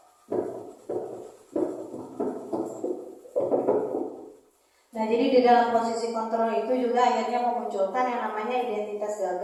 Nah, jadi di dalam posisi kontrol itu juga akhirnya memunculkan yang namanya identitas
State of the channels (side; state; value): both; identical; correlation 1.00